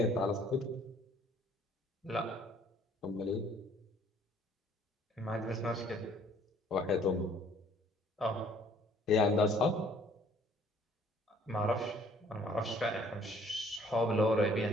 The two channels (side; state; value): both; normal; correlation 0.59